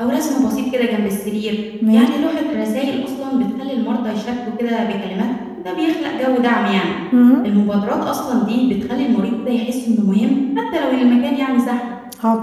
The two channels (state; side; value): identical; both; correlation 1.00